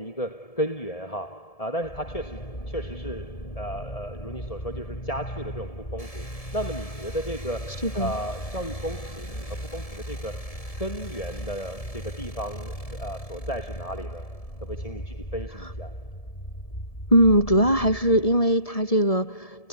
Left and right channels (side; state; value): right; late; 1.7 ms